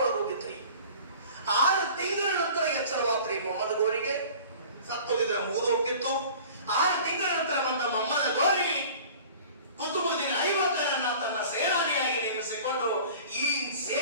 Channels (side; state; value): both; inverted; correlation -0.44